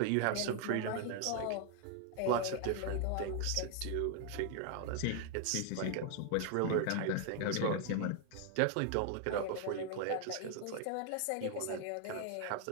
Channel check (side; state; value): both; different; correlation 0.00